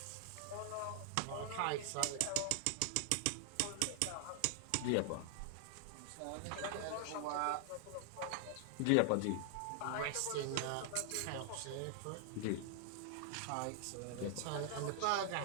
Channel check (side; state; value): both; different; correlation 0.00